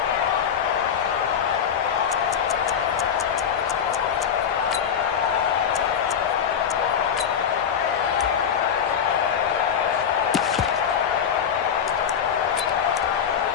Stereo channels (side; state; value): right; quieter; 7.9 dB